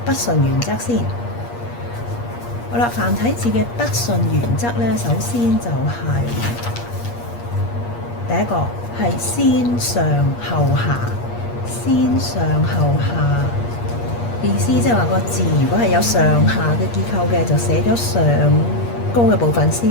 筆順原則先。好啦，繁體字嘅筆順原則咧，首先就係第一個係先上後下，先上後下意思即係話個字如果係有上下嘅結構嘅，就寫咗上高嘅部分先。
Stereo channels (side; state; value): right; late; 8.5 ms